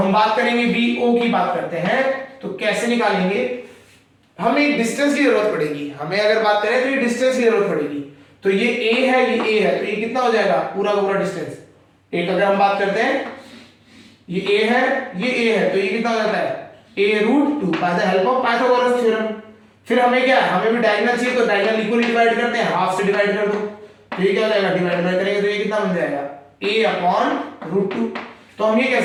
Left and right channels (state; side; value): identical; both; correlation 1.00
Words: बात करेंगे वी ओ की बात करते हैं। तो कैसे निकालेंगे? हमें एक डिस्टेंस की जरूरत पड़ेगी। हमें अगर बात करें तो ये डिस्टेंस की जरूरत पड़ेगी। तो ये ए है, ये ए है, तो ये कितना हो जाएगा? पूरा का पूरा डिस्टेंस। एक अगर हम बात करते हैं, ये ए है, ये ए है, तो ये कितना हो जाता है? a√2 by the help of Pythagoras theorem. फिर हमें क्या है? हमें भी डायगोनल चाहिए, तो डायगोनल इक्वली डिवाइड करते हैं, हाफ से डिवाइड कर दो, तो ये क्या हो जाएगा? डिवाइड करेंगे तो ये कितना बन जाएगा? a/√2। तो हम ये